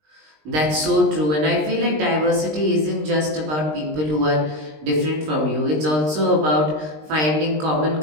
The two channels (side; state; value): left; late; 20 ms